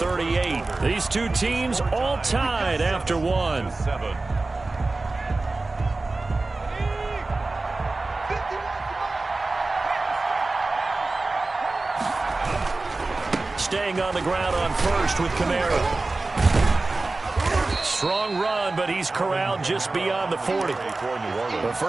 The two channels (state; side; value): quieter; left; 3.3 dB